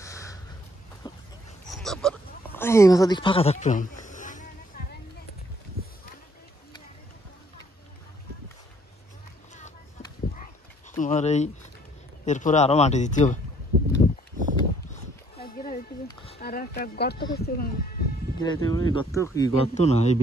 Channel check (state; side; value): normal; both; correlation 0.63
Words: তারপর এই মাথার দিক ফাঁকা থাকতো তোমার এই এরপরে আরো মাটি দিতে হবে গর্ত কি গর্ত না এই